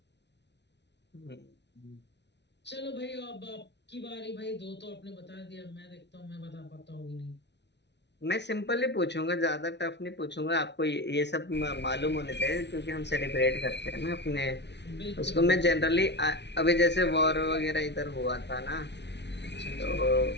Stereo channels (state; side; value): late; right; 0.50 ms